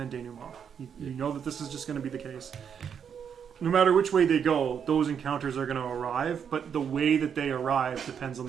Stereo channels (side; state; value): left; quieter; 7.6 dB